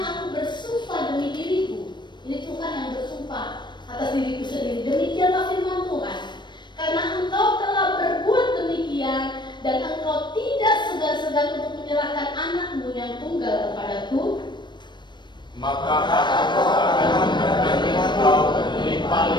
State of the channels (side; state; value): right; late; 0.22 ms